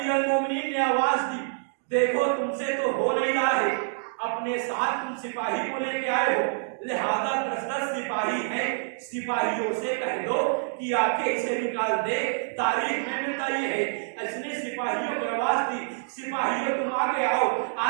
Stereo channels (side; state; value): left; silent; digital silence